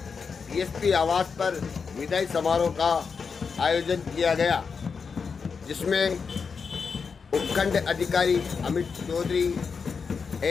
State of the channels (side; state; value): right; quieter; 5.6 dB